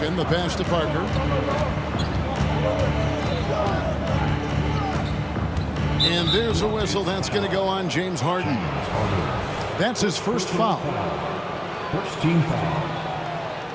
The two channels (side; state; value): both; identical; correlation 1.00